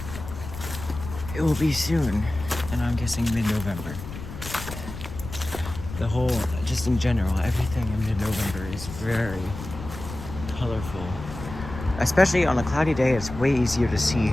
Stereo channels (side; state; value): left; noise; rumble, 11 dB below the sound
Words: it will be soon, and I'm guessing mid-November. The whole, just in general, everything in mid-November is very colorful. Especially on a cloudy day, it's way easier to see.